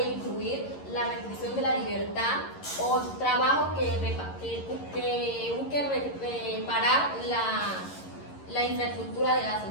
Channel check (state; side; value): late; right; 11 ms